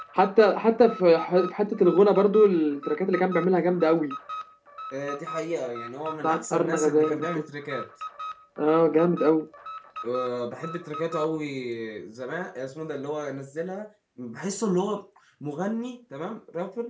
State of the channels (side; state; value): both; identical; correlation 1.00